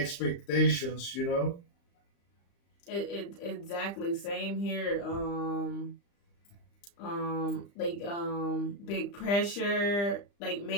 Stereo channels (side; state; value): right; late; 35 ms